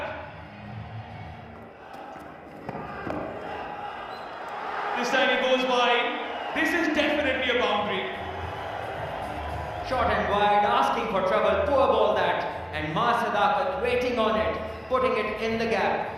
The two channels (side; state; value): both; identical; correlation 1.00